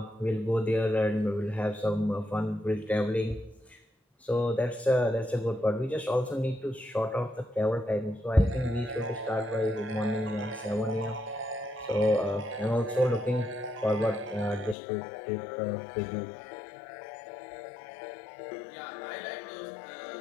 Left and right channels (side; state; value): right; drops out; at 14.8 s